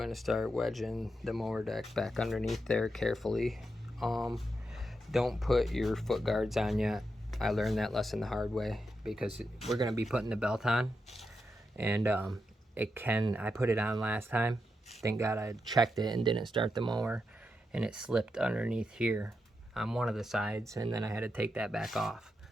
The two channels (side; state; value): both; normal; correlation 0.86